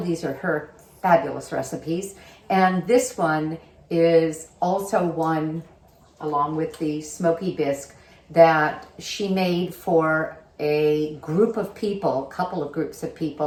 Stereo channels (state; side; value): identical; both; correlation 1.00